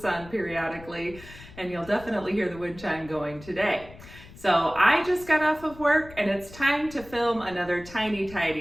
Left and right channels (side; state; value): left; noise; rumble, 18 dB below the sound